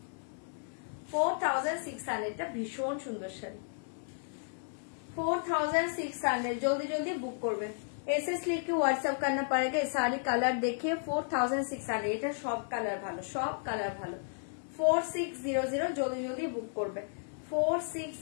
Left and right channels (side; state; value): right; silent; digital silence